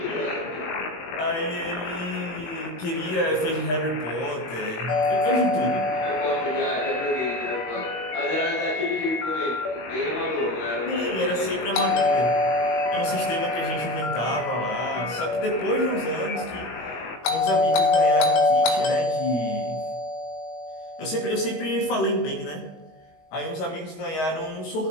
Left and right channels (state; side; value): late; right; 19 ms